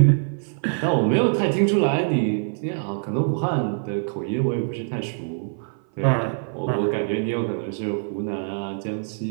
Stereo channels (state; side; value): silent; left; 56 dB below the other